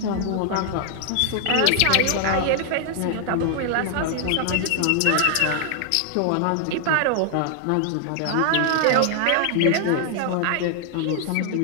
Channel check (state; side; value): different; both; correlation 0.00